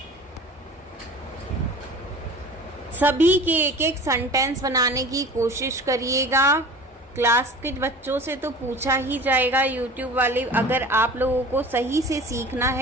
सभी के एक एक सेंटेंस बनाने की कोशिश करिएगा। क्लास के बच्चों से तो पूछा ही जाएगा, यूट्यूब वाले। अगर आप लोगों को सही से सीखना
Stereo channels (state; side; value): normal; both; correlation 0.40